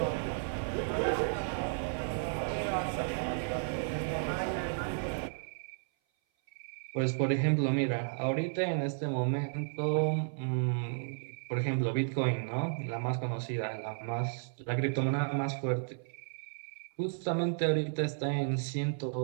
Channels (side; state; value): left; silent; 55 dB below the other